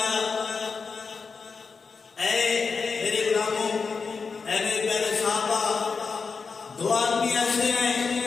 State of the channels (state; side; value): quieter; right; 5.1 dB